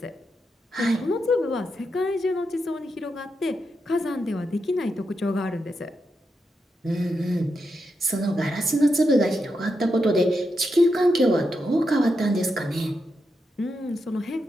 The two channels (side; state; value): both; normal; correlation 0.85